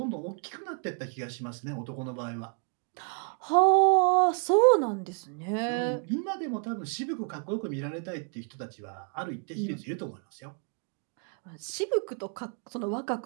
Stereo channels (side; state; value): left; quieter; 38.8 dB